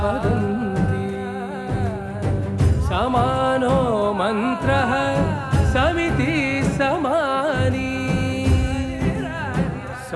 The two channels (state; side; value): identical; both; correlation 1.00